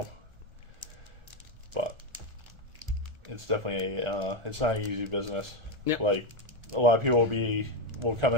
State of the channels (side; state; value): left; late; 1.4 ms